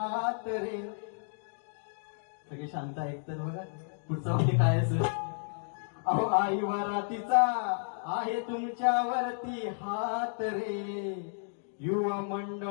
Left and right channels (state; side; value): silent; right; digital silence